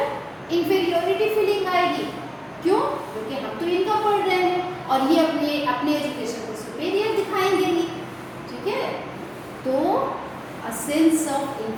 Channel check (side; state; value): both; identical; correlation 1.00